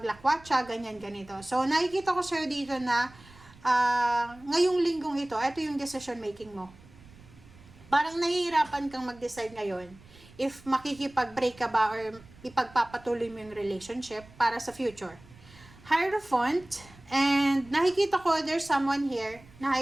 ganyan-ganito. So, nakikita ko sir dito na ngayong linggong ito yung decision making mo. Parang nahihirapan kang mag-decide ngayon if makikipag-break ka ba or ipagpapatuloy mo yung relationship para sa future. Hierophant, and nakikita ko there's someone here na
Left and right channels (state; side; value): noise; right; rumble, 23 dB below the sound